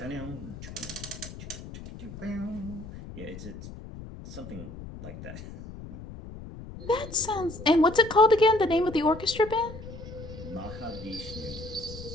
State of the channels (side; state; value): left; noise; rumble, 13 dB below the sound